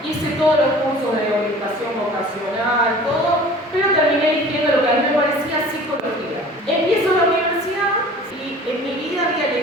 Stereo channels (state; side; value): normal; both; correlation 0.45